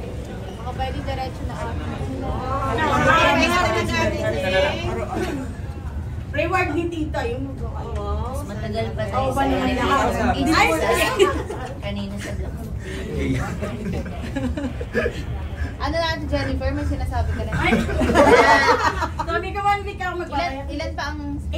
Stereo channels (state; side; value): identical; both; correlation 1.00